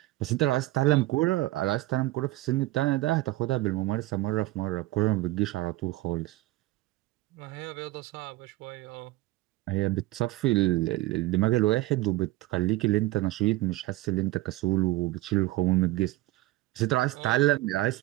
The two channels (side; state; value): left; quieter; 18.3 dB